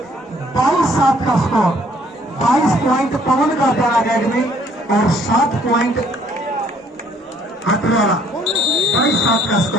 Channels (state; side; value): normal; both; correlation 0.62